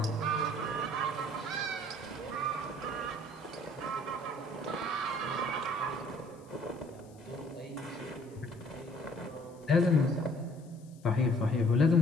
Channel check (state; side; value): noise; left; hiss, 28 dB below the sound